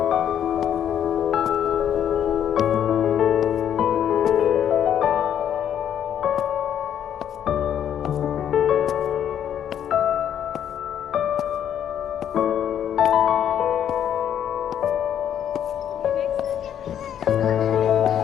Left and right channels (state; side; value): quieter; right; 9.6 dB